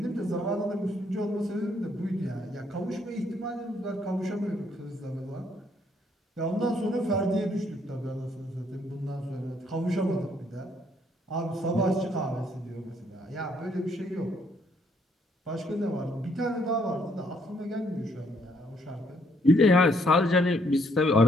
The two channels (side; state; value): both; normal; correlation 0.69